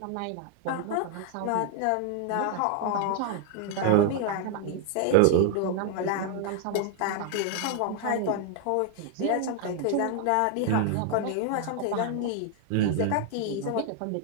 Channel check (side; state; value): both; different; correlation 0.00